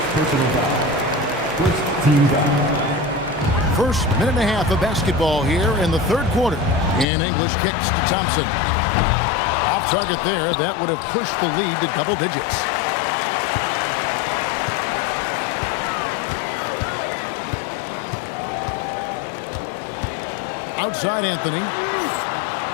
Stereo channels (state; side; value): drops out; right; at 7.1 s